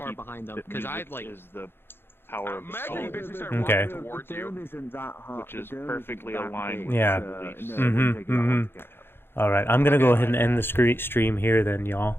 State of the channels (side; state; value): right; late; 0.11 ms